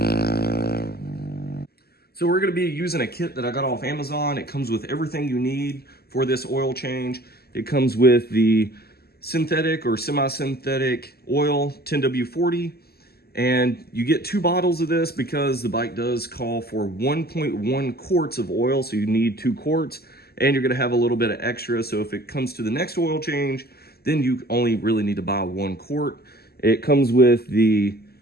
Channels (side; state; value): right; late; 0.46 ms